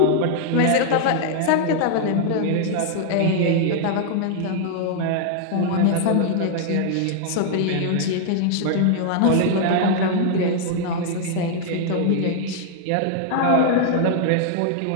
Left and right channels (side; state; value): both; different; correlation -0.01